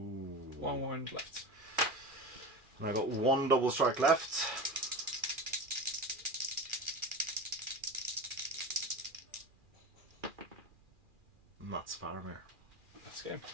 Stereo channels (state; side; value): late; left; 2.4 ms